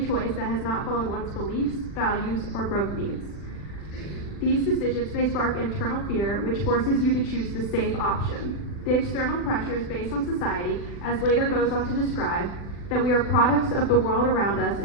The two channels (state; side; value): late; right; 40 ms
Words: choice that has not followed one's beliefs, values, or growth needs. These decisions may spark internal fear, which forces you to choose the safe option. The external pressures based on society, as later goes on to describe, that we are products of the world around us